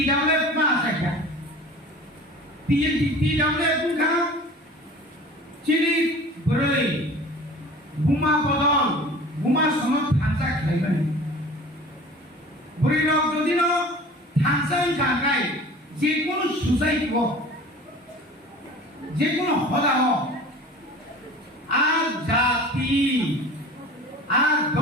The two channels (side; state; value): both; normal; correlation 0.41